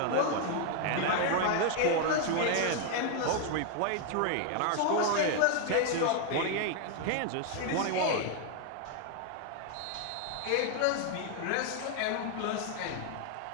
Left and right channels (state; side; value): different; both; correlation 0.00